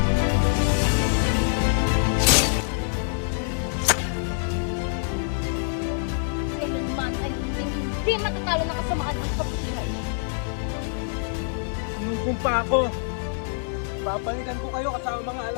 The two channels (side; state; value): right; silent; digital silence